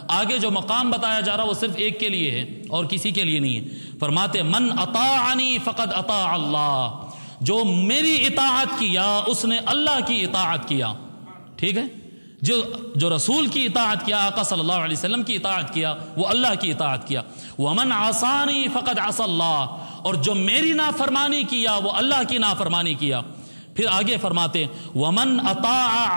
आगे जो मकाम बताया जा रहा वो सिर्फ एक के लिए है और किसी के लिए नहीं है। फरमाते मन अताअनी फ़क़द अता अल्लाह, जो मेरी इताअत किया उसने अल्लाह की इताअत किया। ठीक है, जो रसूल की इताअत किया, आका सल्लल्लाहु अलैहि वसल्लम की इताअत किया, वो अल्लाह की इताअत किया। वमन आसानी फ़क़द असल्लाह, और जो मेरी नाफरमानी किया वो अल्लाह की नाफरमानी किया। फिर आगे फरमाते वमन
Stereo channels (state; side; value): inverted; both; correlation -1.00